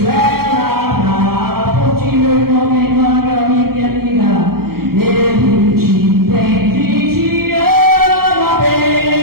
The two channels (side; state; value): left; late; 0.94 ms